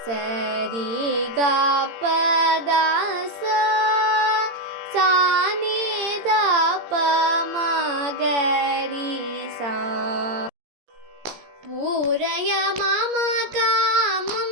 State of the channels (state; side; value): late; left; 17 ms